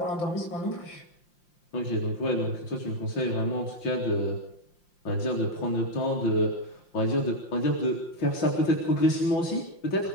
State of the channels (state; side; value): late; right; 5.7 ms